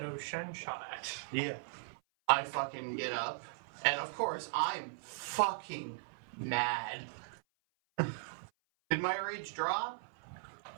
Oisin shot at. Yeah. I fucking get up, and of course, I'm fucking mad. Did my rage drop?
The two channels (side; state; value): left; silent; 52 dB below the other